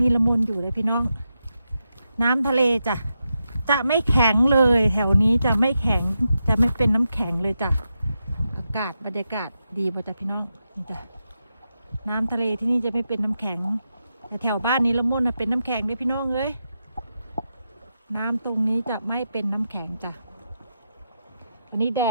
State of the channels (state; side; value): inverted; both; correlation -0.87